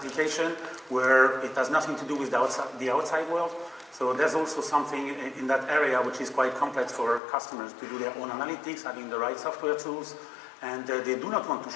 where it has nothing to do with the outside world. So there's also something in that area which is quite complex for customers to do their own analytics, having the right software tools, and they do not want to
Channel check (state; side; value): drops out; right; at 7.2 s